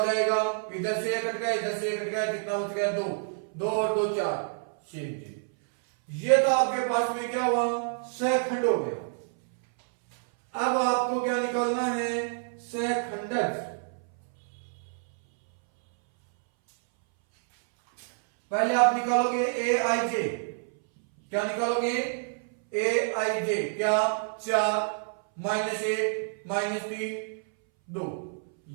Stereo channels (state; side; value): silent; left; 59 dB below the other